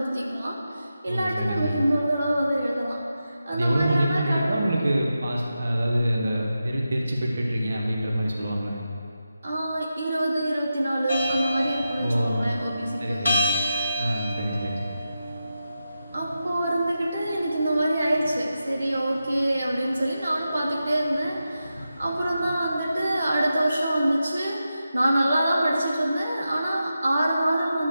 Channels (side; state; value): both; inverted; correlation -0.90